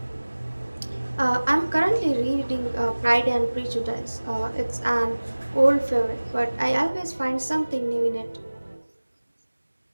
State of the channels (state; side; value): inverted; both; correlation -1.00